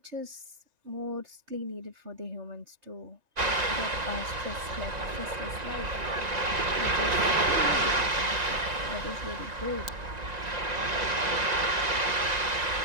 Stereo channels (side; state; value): left; late; 1.9 ms